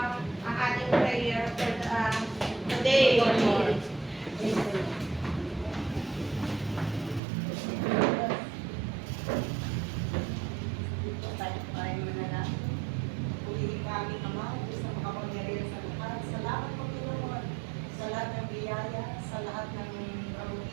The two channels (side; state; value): left; drops out; at 7.2 s